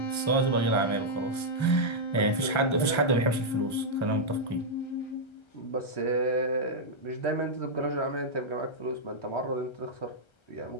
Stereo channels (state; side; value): late; right; 1.3 ms